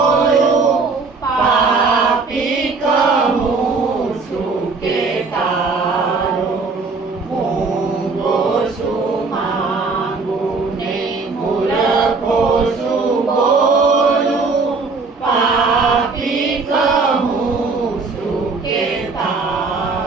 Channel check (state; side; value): quieter; left; 4.2 dB